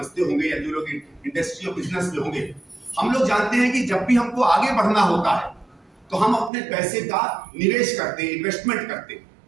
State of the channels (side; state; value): left; drops out; at 6.5 s